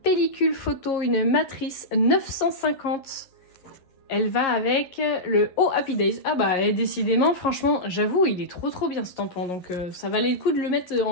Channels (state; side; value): late; right; 11 ms